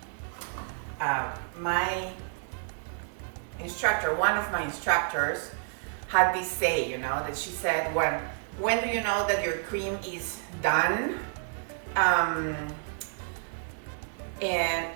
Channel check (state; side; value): silent; left; 58 dB below the other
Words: my instructor, one of my instructors, had this say, you know, that she said, when do you know that your cream is done? And